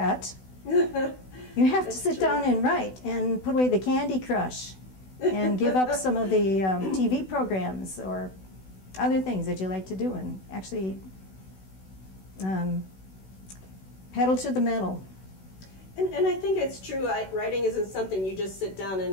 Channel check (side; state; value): right; late; 16 ms